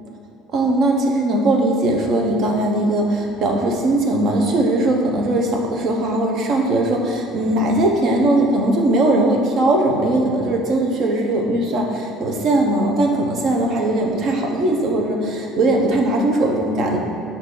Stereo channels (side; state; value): both; normal; correlation 0.52